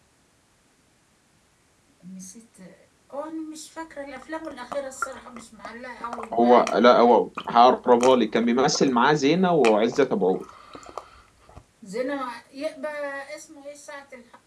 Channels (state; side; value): identical; both; correlation 1.00